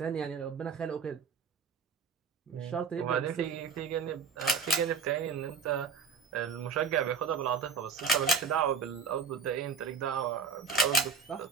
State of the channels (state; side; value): quieter; left; 5.5 dB